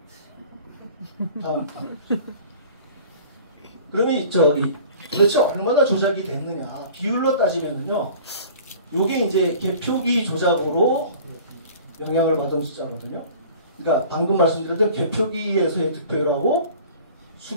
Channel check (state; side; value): inverted; both; correlation -0.45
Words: 다음. 그러면 도대체 얼마나 조작이 됐느냐. 비율로 따지면요. 요게 이제 개표기 조작으로 영향을 받은 숫자거든요. 그러니까 방금 말씀드렸던 개표기에서의 득표율하고